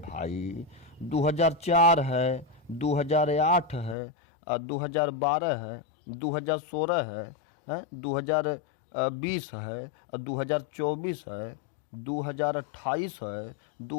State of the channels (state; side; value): drops out; right; at 4.0 s